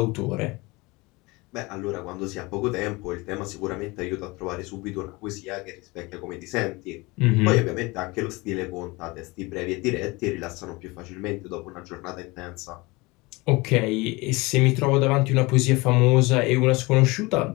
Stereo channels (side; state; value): right; quieter; 23.9 dB